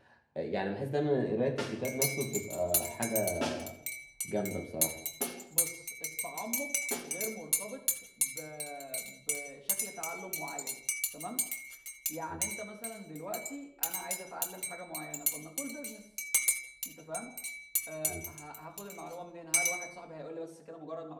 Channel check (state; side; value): identical; both; correlation 1.00